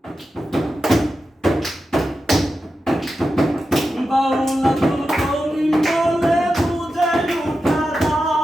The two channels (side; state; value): both; normal; correlation 0.91